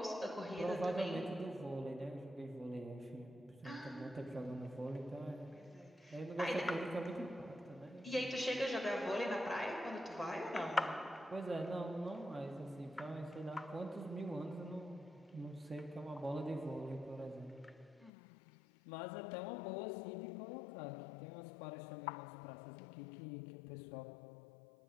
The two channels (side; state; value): right; drops out; at 18.1 s